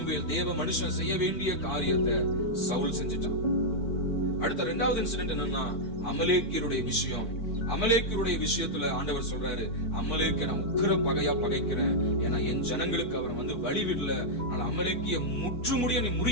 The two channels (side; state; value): right; late; 4.5 ms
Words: தேவ மனுஷன் செய்ய வேண்டிய காரியத்தை சவுல் செஞ்சிட்டான். அடுத்த இரண்டாவது இன்சிடென்ட் என்னன்னா, அமலேக்கியருடைய விஷயம். அமலேக்கியருடைய விஷயத்துல ஆண்டவர் சொல்றாரு, அமலேக்கிய நான் உக்கிர பகையா பகைக்கிறேன். ஏன்னா என் ஜனங்களுக்கு அவன் வழி விடல. அமலேக்கிய முற்றுமுடிய நீ